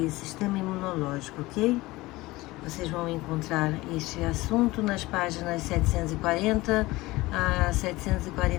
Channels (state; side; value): quieter; right; 19.9 dB